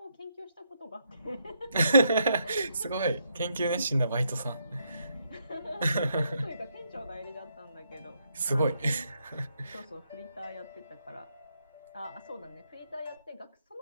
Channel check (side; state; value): both; inverted; correlation -0.77